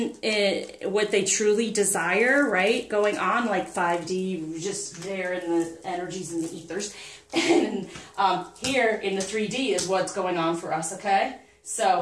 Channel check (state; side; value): identical; both; correlation 1.00